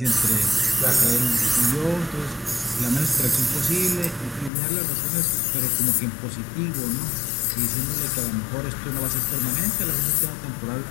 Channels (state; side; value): drops out; right; at 4.5 s